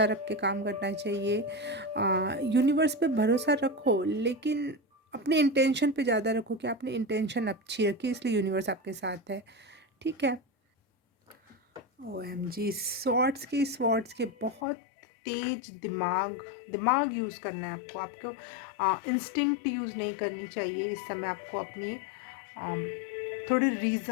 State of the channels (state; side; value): drops out; right; at 14.6 s